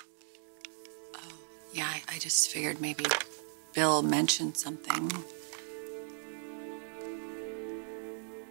Oh, yeah, I just figured maybe Bill mentioned something.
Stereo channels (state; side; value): silent; left; digital silence